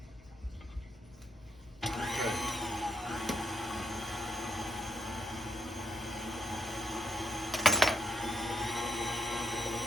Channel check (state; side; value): normal; both; correlation 0.77